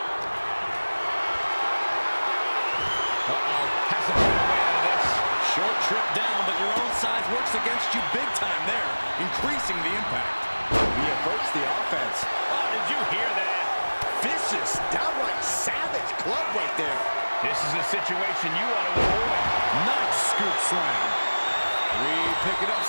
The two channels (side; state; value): both; inverted; correlation -1.00